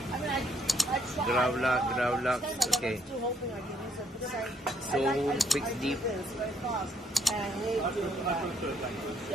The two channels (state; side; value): normal; both; correlation 0.69